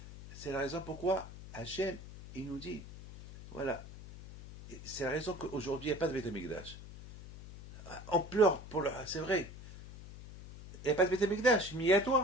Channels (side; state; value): left; noise; hum, 14 dB below the sound